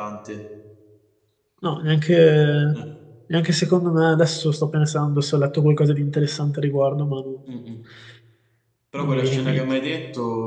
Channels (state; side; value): identical; both; correlation 1.00